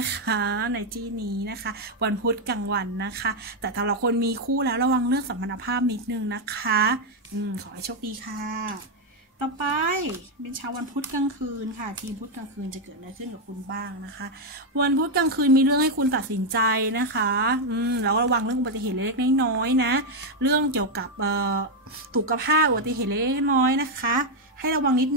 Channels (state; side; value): normal; both; correlation 0.03